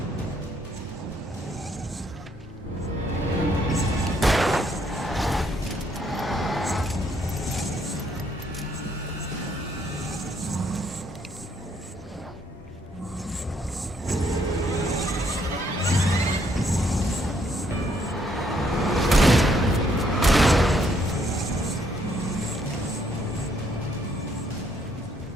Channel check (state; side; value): normal; both; correlation 0.70